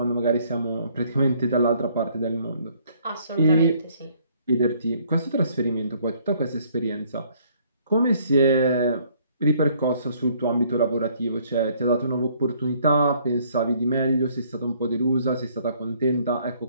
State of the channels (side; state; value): both; inverted; correlation -0.63